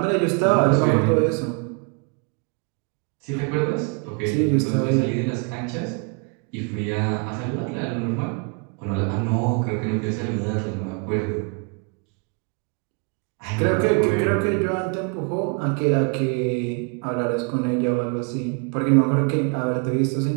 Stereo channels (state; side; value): quieter; left; 34.5 dB